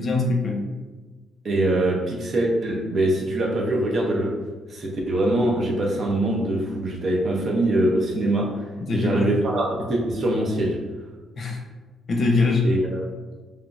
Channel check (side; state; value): both; normal; correlation 0.75